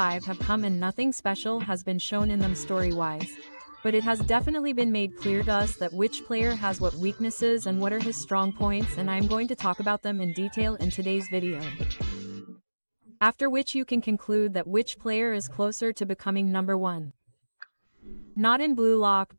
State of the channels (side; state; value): both; inverted; correlation -1.00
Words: have come and nothing special has been shown in them story-wise. But it has definitely been made clear to us that which player has what weaknesses and what are his strong points, and I'm going to talk about them in detail in today's video. After which you can conclude that which player is closer to becoming number one. Not in Blue Lock